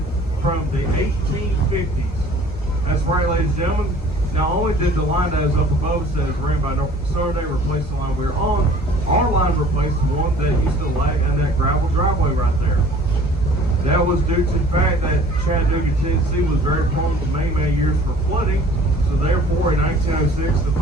from the 1850s. That's right, ladies and gentlemen. Not only did the line that is up above us that is ran by Norfolk Southern, they replaced the line we were on, our line replaced the one that used to lag in that gravel driveway right there. That was due to the fact that Chattanooga, Tennessee was very prone to many years for flooding. So therefore, in 1906, the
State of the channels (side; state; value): both; normal; correlation 0.51